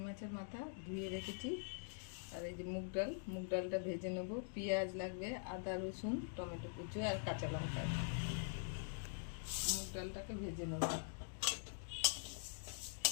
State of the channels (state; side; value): silent; right; digital silence